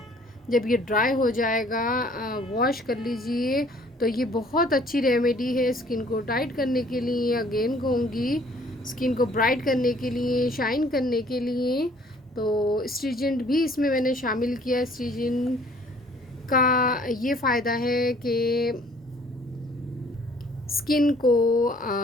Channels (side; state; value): both; normal; correlation 0.57